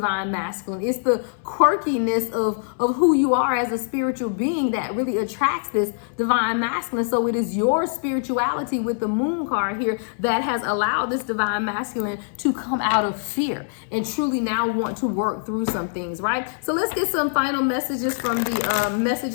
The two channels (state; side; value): silent; right; 63 dB below the other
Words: masculine. It's the quirkiness of who you are as a spiritual being that really attracts this divine masculine. So it is your spirituality with the moon card here that has allowed this divine masculine to come out of fear and truly now want to work through some things, right? So let's get some final messages from the